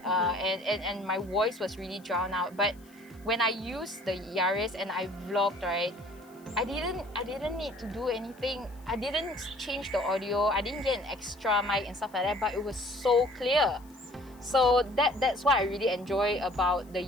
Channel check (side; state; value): left; noise; hiss, 28 dB below the sound